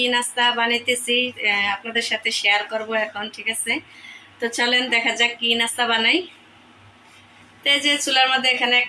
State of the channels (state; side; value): identical; both; correlation 1.00